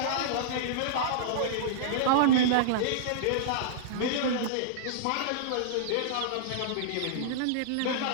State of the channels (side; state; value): both; different; correlation -0.02